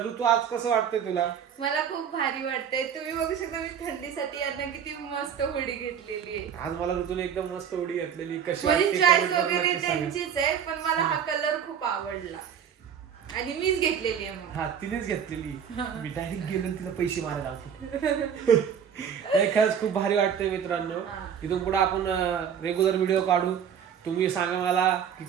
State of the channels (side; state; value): left; quieter; 8.0 dB